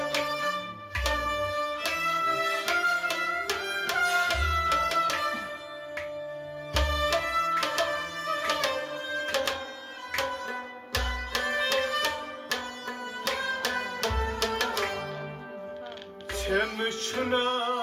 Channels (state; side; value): identical; both; correlation 1.00